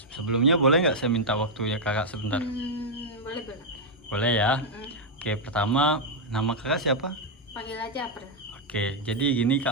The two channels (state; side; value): normal; both; correlation -0.02